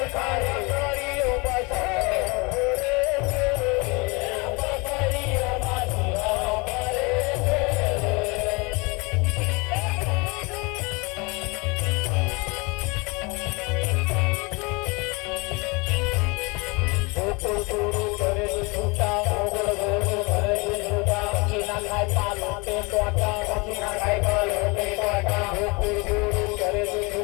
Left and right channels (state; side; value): quieter; right; 27.9 dB